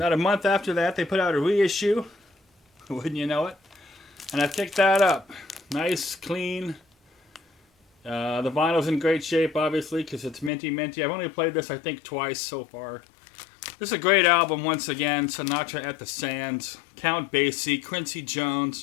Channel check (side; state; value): right; drops out; at 10.5 s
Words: a month after that, they put out a reissue. Wouldn't you know it? And I picked that up. Nice, clean. The vinyl's in great shape, obviously, because it's minty. I've only played this, I think, twice so far. This is a great album, once again. Sinatra at the Sands. Count Basie, Quincy